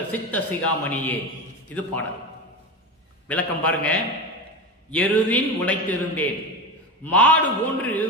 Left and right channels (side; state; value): both; normal; correlation 0.22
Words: சித்த சிகாமணியே. இது பாடல். விளக்கம் பாருங்க. எருதின் உழைத்திருந்தேன், மாடு போன்று